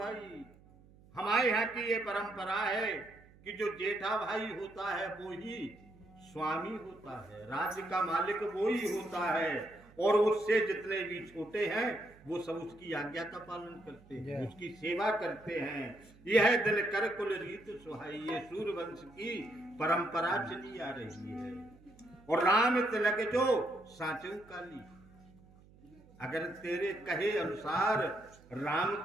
हमारे यहाँ की ये परंपरा है कि जो जेठा भाई होता है वो ही स्वामी होता है, राज्य का मालिक वो ही होता है, और उससे जितने भी छोटे हैं वो सब उसकी आज्ञा का पालन करते हैं, उसकी सेवा करते हैं। यह दिल कर कुल रीत सुहाई, ये सूर्यवंश की परंपरा चली आ रही है। और राम तिलक जो साचू काली, अगर तेरे कहे अनुसार राम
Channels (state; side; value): noise; right; hum, 25 dB below the sound